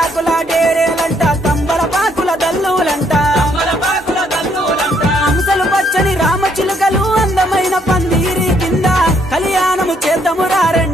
డేరేలంట కంబల పాకుల దల్లులంట హంసలు పచ్చని రామచిలుకలు అందమైన పందిరి కింద కళ్యాణము చేద్దాము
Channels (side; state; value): both; normal; correlation 0.70